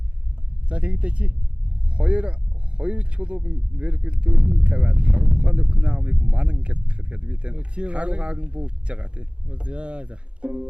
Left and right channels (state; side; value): late; left; 0.057 ms